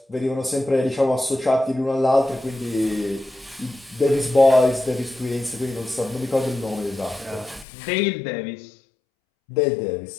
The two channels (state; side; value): drops out; right; at 7.7 s